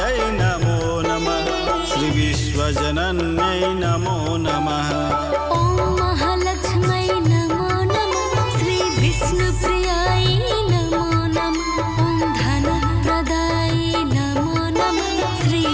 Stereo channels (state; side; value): identical; both; correlation 1.00